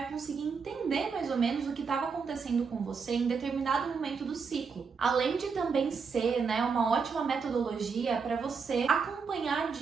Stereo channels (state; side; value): quieter; left; 5.5 dB